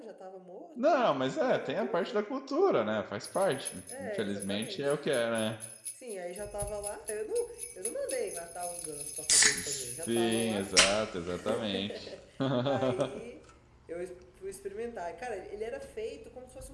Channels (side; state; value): both; identical; correlation 1.00